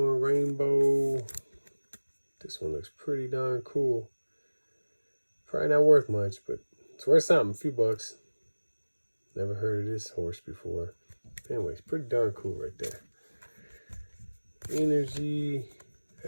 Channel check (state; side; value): inverted; both; correlation -1.00